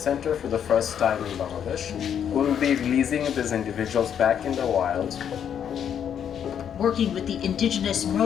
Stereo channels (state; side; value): quieter; right; 8.7 dB